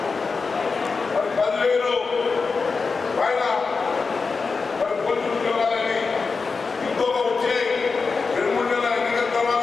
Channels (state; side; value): quieter; right; 4.6 dB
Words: మరి 10,000 పైన మరి పోలీసు ఉద్యోగాలని ఇంకొక వచ్చే 2-3 నెలల ఎన్నికల తర్వాత